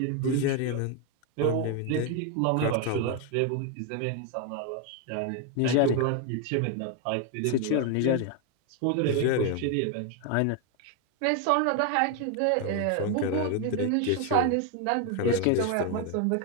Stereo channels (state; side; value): different; both; correlation 0.01